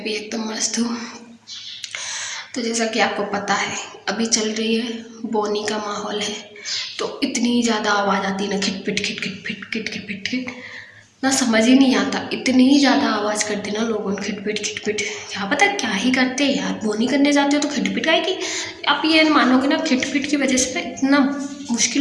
भी एकदम मस्त हूँ। तो जैसा कि आपको पता है, अभी चल रही है बोनी का माहौल है। तो इतनी ज़्यादा आवाज़ आती है ना, खिट पिट खिट खिट पिट खिट खिट पिट खिट, ना समझ ही नहीं आता। इतनी ज़्यादा आवाज़ करते ना लोगों, खिट पिट खिट पिट। क्या पता क्या ही करते हैं यार। बोनी करने जाते हो तो खिट पिट आएगी। आप ये मानोगे ना, खिट पिट की वजह से ना इतना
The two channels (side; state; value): both; identical; correlation 1.00